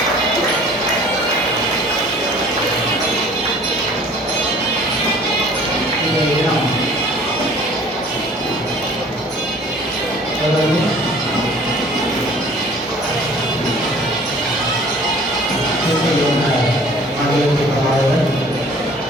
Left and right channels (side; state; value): both; normal; correlation 0.50